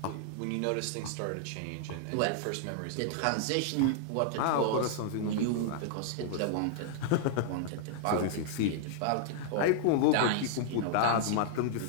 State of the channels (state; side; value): different; both; correlation -0.01